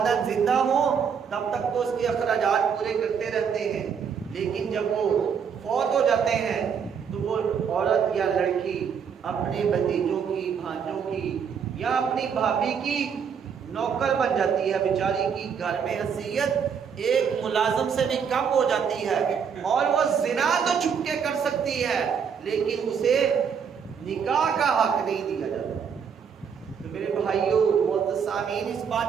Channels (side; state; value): left; quieter; 6.9 dB